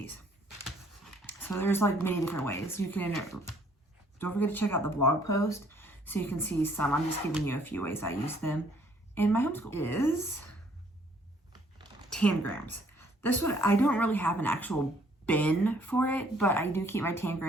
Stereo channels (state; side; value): normal; both; correlation 0.63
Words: So there's like many different ways. You can, don't forget to check out the blog post so you can see some. I'm just giving you a few ways I use them in my homeschool. Is Tangrams. This one, I don't really have an actual bin for it, but I do keep my